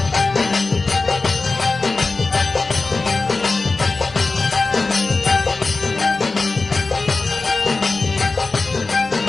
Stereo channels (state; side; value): quieter; right; 3.7 dB